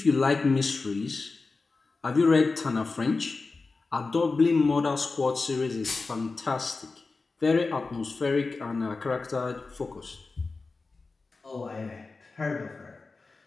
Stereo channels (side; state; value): right; quieter; 3.9 dB